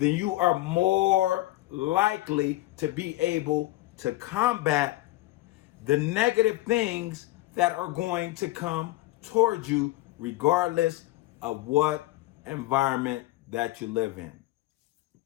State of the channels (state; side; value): quieter; right; 18.0 dB